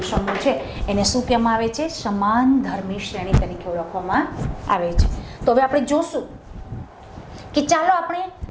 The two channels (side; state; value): both; identical; correlation 1.00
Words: સમૂહ છે એને શું કહેવામાં આવે છે? સમાન ધર્મી શ્રેણી તરીકે ઓળખવામાં આવે છે. તો હવે આપણે જોશું કે ચાલો આપણે